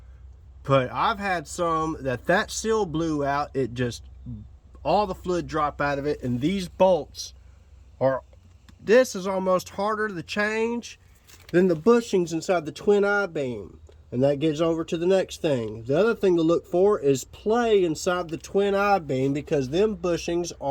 but I've had some that seal blew out. It just, all the fluid drop out of it, and these bolts are, this is almost harder to change than the bushings inside the twin I-beam. And that gets over to the next thing. The other thing to look for is play inside the twin I-beam, because them bushings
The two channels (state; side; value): identical; both; correlation 1.00